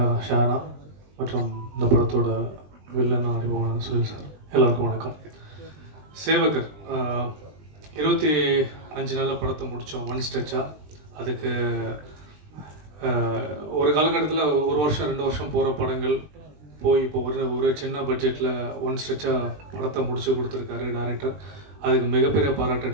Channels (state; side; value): late; left; 20 ms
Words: Shana மற்றும் இந்த படத்தோட வில்லன் அறிமுகமான சுனில் சார், எல்லாருக்கும் வணக்கம். சேவகர் 25 நாளில் படத்தை முடித்தோம், ஒன் ஸ்ட்ரெச்சாக. அதுக்கு ஒரு காலகட்டத்தில் 1 வருஷம் 2 வருஷம் போகிற படங்கள் போய் இப்போ ஒரு சின்ன பட்ஜெட்டில் ஒன் ஸ்ட்ரெச்சாக படத்தை முடிச்சு கொடுத்துருக்காரு டைரக்டர். அதுக்கு மிகப்பெரிய பாராட்டு